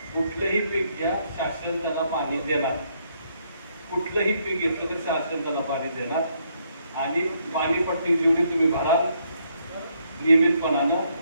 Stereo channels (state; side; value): inverted; both; correlation -0.73